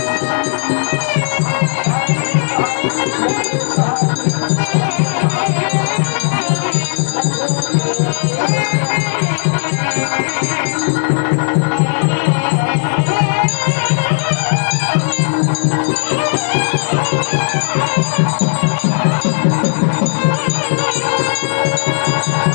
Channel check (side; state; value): right; silent; digital silence